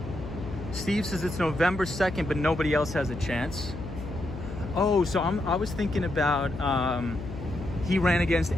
Steve says it's November 2nd, but nobody else has a chance. Oh, so I was thinking about, he ran against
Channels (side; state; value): left; noise; hum, 10 dB below the sound